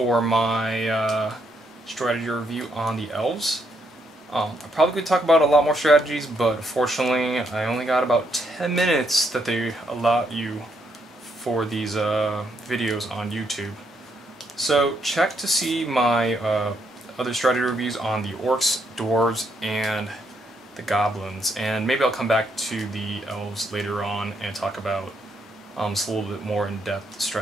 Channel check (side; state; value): both; normal; correlation 0.75